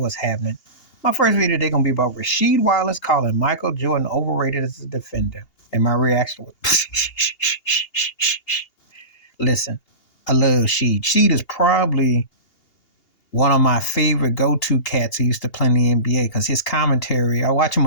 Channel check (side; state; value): right; late; 2.8 ms